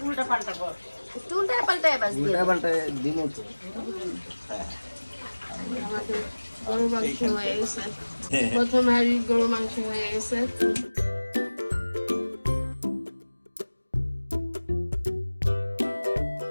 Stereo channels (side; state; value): both; inverted; correlation -1.00